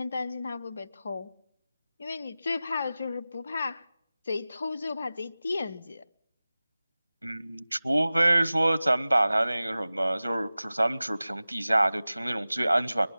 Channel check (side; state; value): both; inverted; correlation -0.96